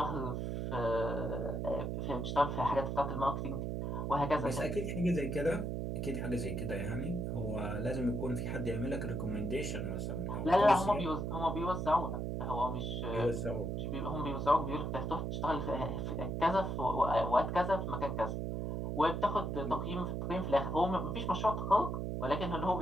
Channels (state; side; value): noise; right; hum, 2 dB below the sound